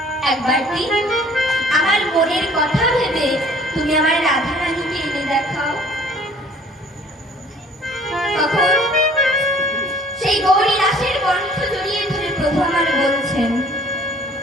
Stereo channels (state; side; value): normal; both; correlation 0.54